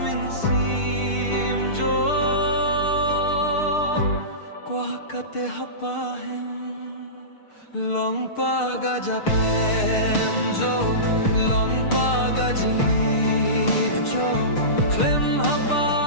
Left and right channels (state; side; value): late; right; 6.6 ms